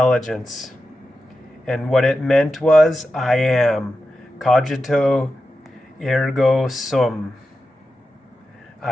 And what it meant was, I am, cogito ergo sum.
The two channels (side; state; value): both; normal; correlation 0.90